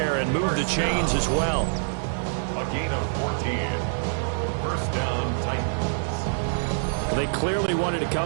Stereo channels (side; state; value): left; silent; digital silence